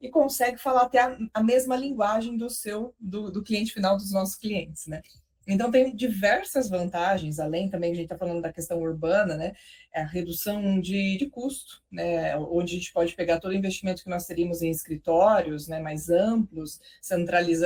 e consegue falar até a mesma linguagem do cliente final dos nossos clientes, né? Então, tem diversas vantagens, além também, a gente está falando da questão urbana, né? A redução de custo, né? Onde a gente pode pegar todo o investimento que nós teríamos em escritórios, né, mais amplos,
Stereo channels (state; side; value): identical; both; correlation 1.00